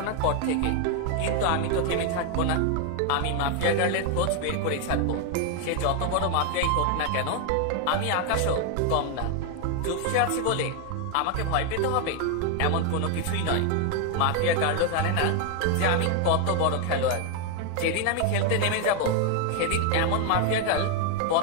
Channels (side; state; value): both; different; correlation 0.01